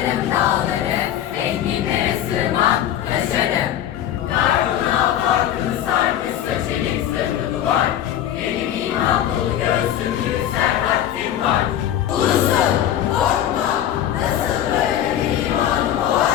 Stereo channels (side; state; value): right; quieter; 11.1 dB